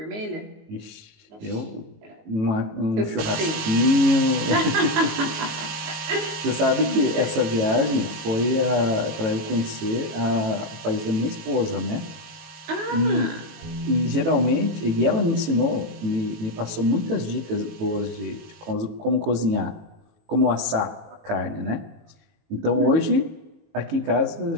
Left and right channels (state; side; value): late; left; 18 ms